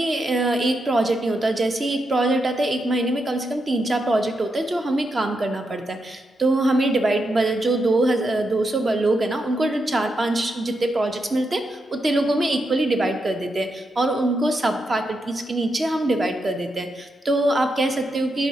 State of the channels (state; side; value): normal; both; correlation 0.84